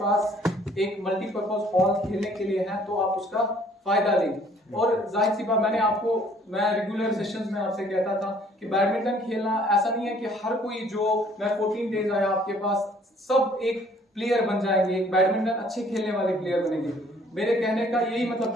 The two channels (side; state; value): both; normal; correlation 0.59